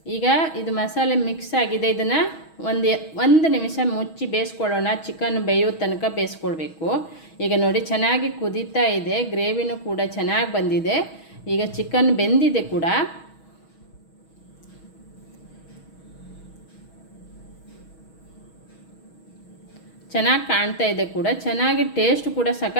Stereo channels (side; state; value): right; late; 6.3 ms